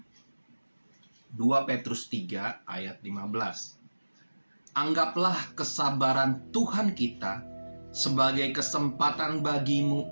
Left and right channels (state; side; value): inverted; both; correlation -1.00